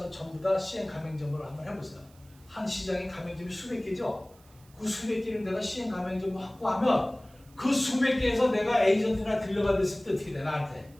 전부 다 CM 가맹점으로 한번 해보세요. 한 시장에 가맹점이 수백 개죠? 그 수백 개를 내가 CM 가맹점을 확보하면 그 수백 개에서 내가 에이전트나 딜러가 됐을 때 어떻게 돼? 나한테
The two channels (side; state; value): right; noise; hiss, 28 dB below the sound